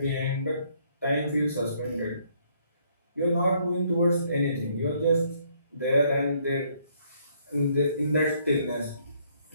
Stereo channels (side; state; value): both; inverted; correlation -0.68